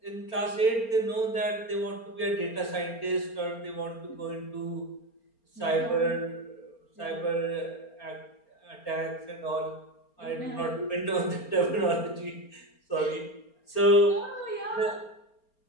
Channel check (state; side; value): late; right; 4.3 ms